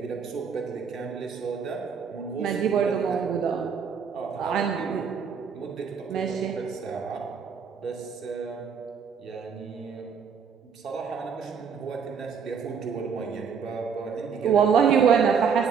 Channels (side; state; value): left; quieter; 6.5 dB